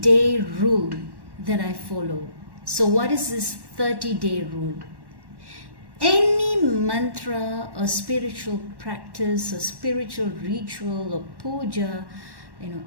rule that I follow. So what is this 30-day rule? Any mantra or spiritual practice or spiritual ritual or puja,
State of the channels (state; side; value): late; left; 1.1 ms